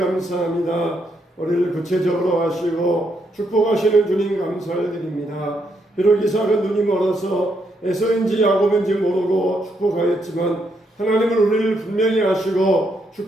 우리를 구체적으로 하시고 축복하시는 주님 감사를 드립니다. 비록 이삭은 눈이 멀어서 에서인지 야곱인지 모르고 축복하였지만 하나님은 우리를 분명히 아시고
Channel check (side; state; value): both; normal; correlation 0.77